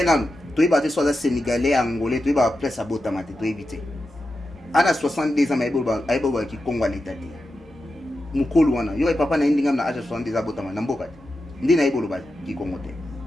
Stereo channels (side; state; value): both; normal; correlation 0.90